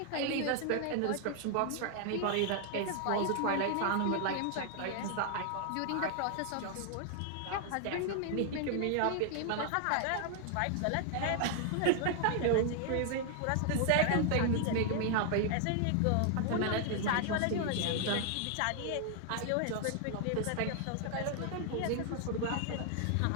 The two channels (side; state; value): both; different; correlation 0.00